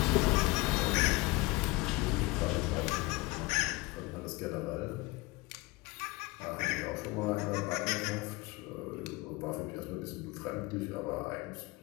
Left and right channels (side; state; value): right; quieter; 23.0 dB